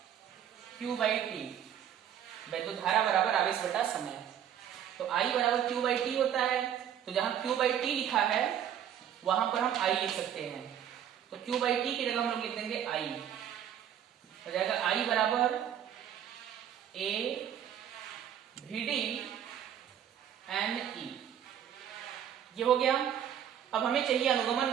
Q बाई टी, वैद्युत धारा बराबर आवेश बटा समय। तो I बराबर Q बाई टी होता है, तो जहां Q बाई टी लिखा है वहां पर हम I लिख सकते हैं, तो Q बाई टी की जगह हम लोग लिख देंगे I, हो जाएगा I बराबर A V D N E, ये हो गया। अब हमें चाहिए अनुगमन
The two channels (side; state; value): left; quieter; 9.8 dB